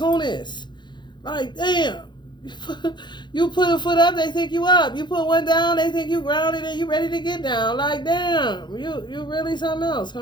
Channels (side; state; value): right; late; 0.22 ms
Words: Like, damn. You put a foot up, they think you up. You put one down, they think you grounded and you ready to get down. Like, damn. You really something else,